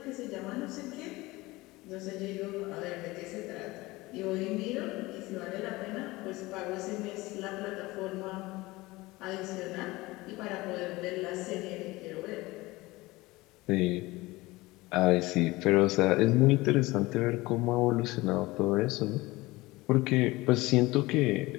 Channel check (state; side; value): quieter; right; 20.7 dB